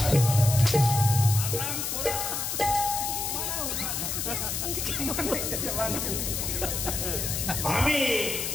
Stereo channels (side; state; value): left; noise; hiss, 2 dB below the sound